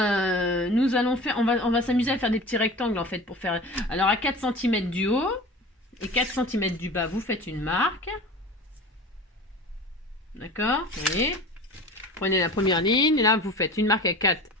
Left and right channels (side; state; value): both; normal; correlation 0.37